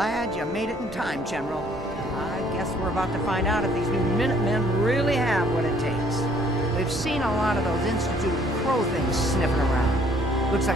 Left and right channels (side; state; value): both; normal; correlation 0.61